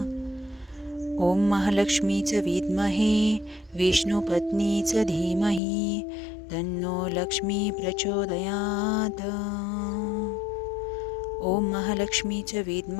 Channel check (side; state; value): right; drops out; at 5.6 s